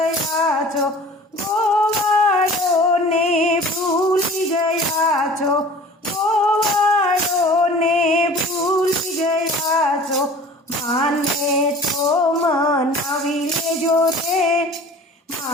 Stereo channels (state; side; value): normal; both; correlation 0.44